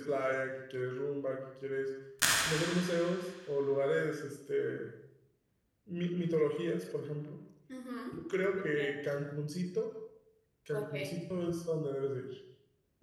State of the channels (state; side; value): identical; both; correlation 1.00